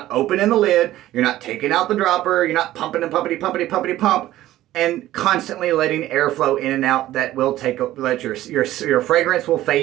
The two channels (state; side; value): quieter; left; 14.7 dB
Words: opening the lid, you're not taking out the dropper, you're not pumping and pumpity pump, and constantly letting airflow in and out. That will let your fragrance will